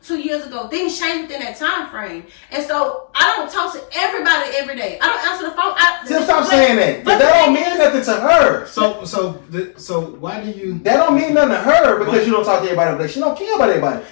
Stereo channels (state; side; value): silent; right; digital silence